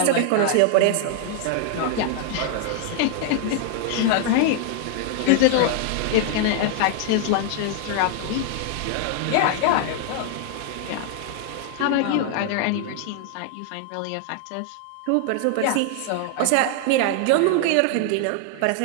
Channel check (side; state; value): both; different; correlation 0.00